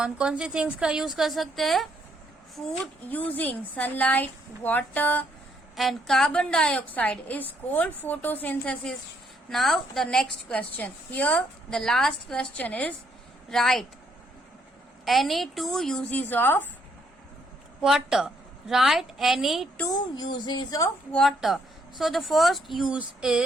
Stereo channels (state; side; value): normal; both; correlation 0.71